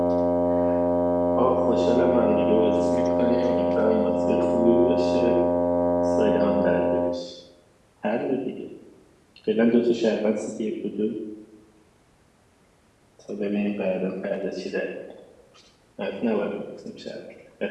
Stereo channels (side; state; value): both; identical; correlation 1.00